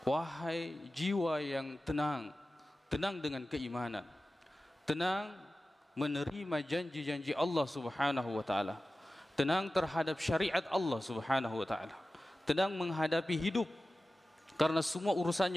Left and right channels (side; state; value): both; normal; correlation 0.95